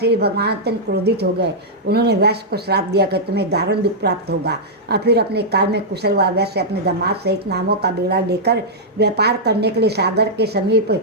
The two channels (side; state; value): both; normal; correlation -0.08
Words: भगवान अत्यंत क्रोधित हो गए। उन्होंने वैश्य को श्राप दिया कि तुम्हें दारुण दुख प्राप्त होगा। और फिर अपने कार्य में कुशल हुआ वैश्य अपने दामाद सहित नामों का बेड़ा लेकर व्यापार करने के लिए सागर के समीप